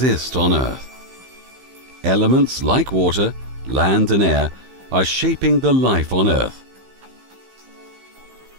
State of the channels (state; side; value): late; left; 15 ms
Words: on Earth. Elements like water, land and air are shaping the life on Earth.